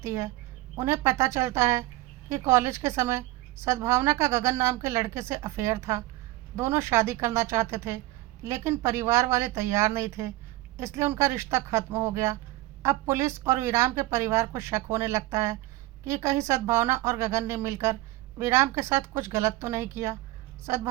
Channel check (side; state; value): left; quieter; 18.6 dB